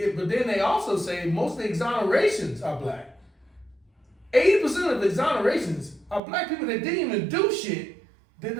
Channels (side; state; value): left; drops out; at 6.2 s